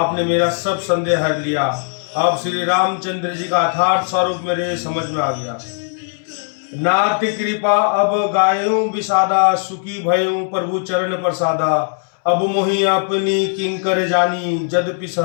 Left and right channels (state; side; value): silent; right; 67 dB below the other